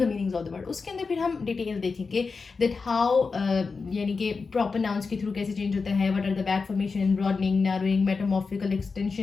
meanings of the word। उसके अंदर फिर हम detail देखेंगे that how यानी कि proper nouns के थ्रू कैसे चेंज होता है, what are the back formation, broadening, narrowing, metamorphical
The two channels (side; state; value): right; quieter; 4.6 dB